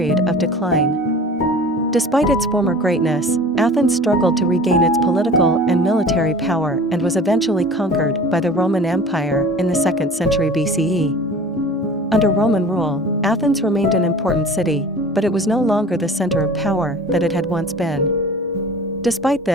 of decline. Despite its former greatness, Athens struggled to regain its political and military power and was eventually conquered by the Roman Empire in the 2nd century BCE. Under Roman rule, Athens remained an important city, but it was no longer the center of power that it had once been. Despite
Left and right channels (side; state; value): both; normal; correlation 0.41